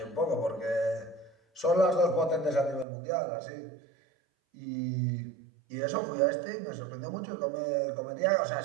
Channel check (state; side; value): drops out; left; at 2.9 s